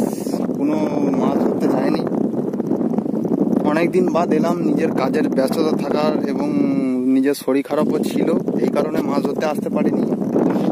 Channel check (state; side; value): identical; both; correlation 1.00